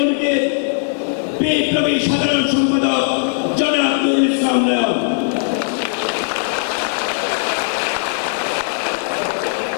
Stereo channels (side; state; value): right; silent; digital silence